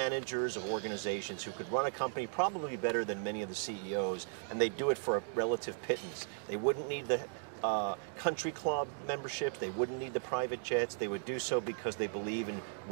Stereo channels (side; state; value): left; silent; digital silence